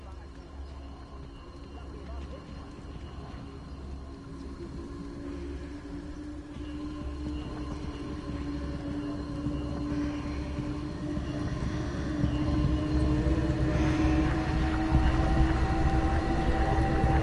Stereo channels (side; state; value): both; identical; correlation 1.00